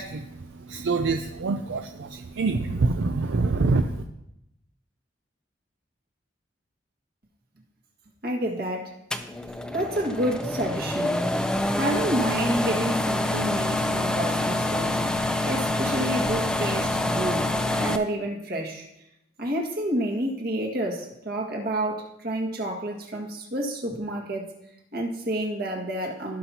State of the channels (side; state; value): both; normal; correlation 0.62